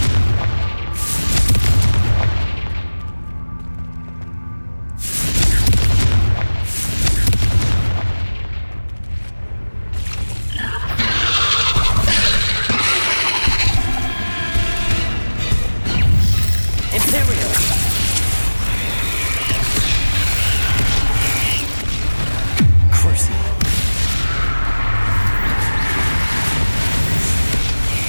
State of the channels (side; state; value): both; inverted; correlation -1.00